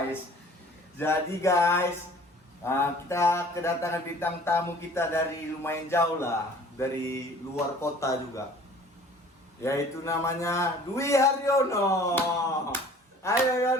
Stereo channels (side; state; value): both; normal; correlation 0.49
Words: Jadi guys, kita kedatangan bintang tamu kita dari lumayan jauh lah, dari luar kota juga. Yaitu namanya Dwi Haryono. Ayo